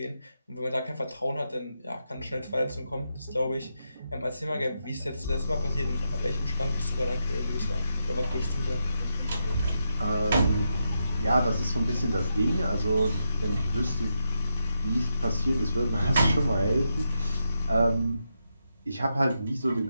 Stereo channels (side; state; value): both; inverted; correlation -0.84